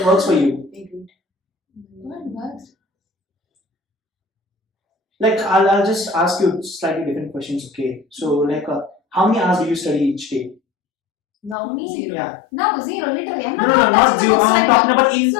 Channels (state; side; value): drops out; right; at 11.6 s